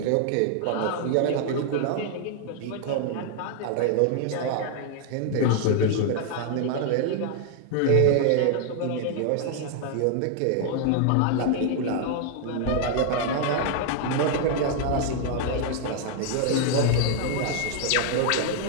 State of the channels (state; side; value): different; both; correlation 0.00